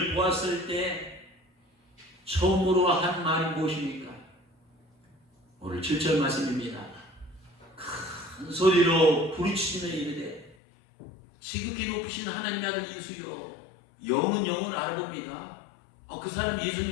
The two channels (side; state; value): right; drops out; at 10.6 s